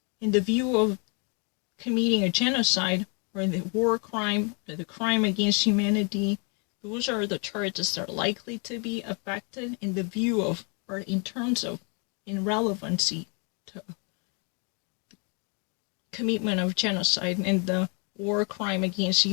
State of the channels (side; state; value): right; quieter; 36.1 dB